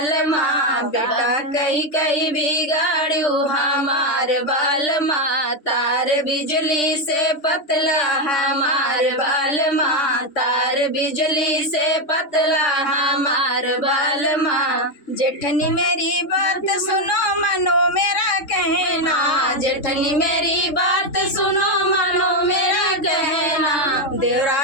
माँ, बेटा कहीं कहीं बिगाड़ू हमार बाल माँ, तार बिजली से पतला हमार बाल माँ, तार बिजली से पतला हमार बाल माँ। जेठनी मेरी बात सुनो मानो मेरा कहना, जेठनी मेरी बात सुनो मानो मेरा कहना, देवरा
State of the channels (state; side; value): late; right; 3.6 ms